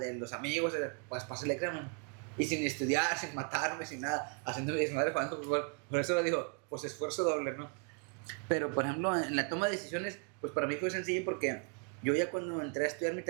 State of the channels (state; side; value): quieter; left; 38.1 dB